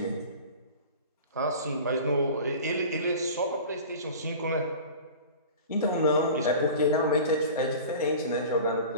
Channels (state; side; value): inverted; both; correlation -0.38